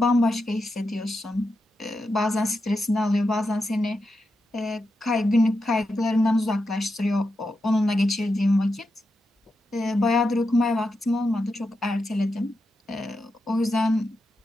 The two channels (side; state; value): both; normal; correlation 0.87